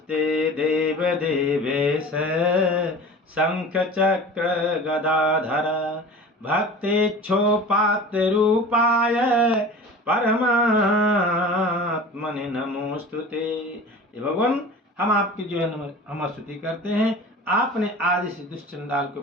देव देवेश शंख चक्र गदाधर भक्तेच्छोपात्र रूपाय परमात्मने नमोस्तुते। भगवान हम आपकी जो है हम स्तुति करते हैं। आपने आदि से दुष्चंडाल के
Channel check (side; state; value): both; normal; correlation 0.38